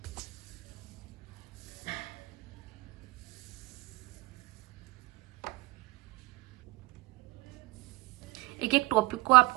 एक एक टॉपिक को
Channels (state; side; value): quieter; left; 21.0 dB